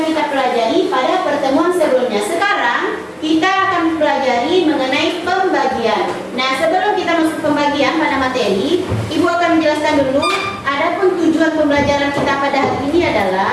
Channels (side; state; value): both; identical; correlation 1.00